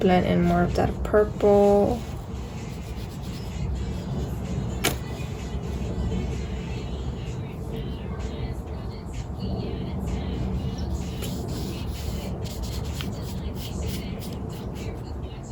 in more of that purple.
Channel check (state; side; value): identical; both; correlation 1.00